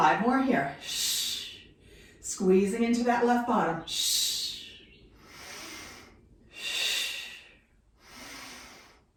more here. Squeezing into that left bottom.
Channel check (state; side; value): identical; both; correlation 1.00